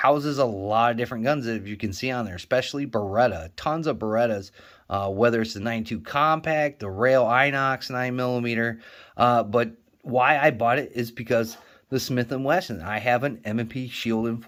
a lot of different guns that you can see on there, especially Beretta, tons of Berettas, whether it's the 92 Compact, the Rail Inox 9mm, but why I bought it is because the Smith & Wesson. I have an M&P Shield in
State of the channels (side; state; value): both; identical; correlation 1.00